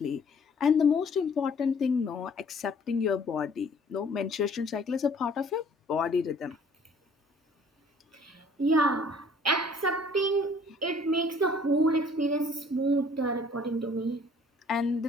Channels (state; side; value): normal; both; correlation 0.56